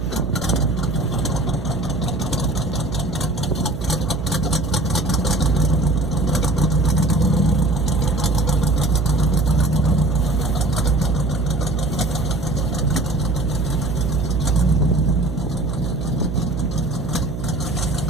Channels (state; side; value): noise; right; hum, 7 dB below the sound